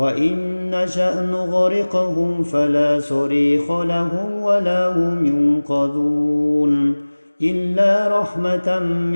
نشأ نغرقهم فلا صريخ لهم ولا هم ينقذون إلا رحمة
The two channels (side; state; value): both; inverted; correlation -1.00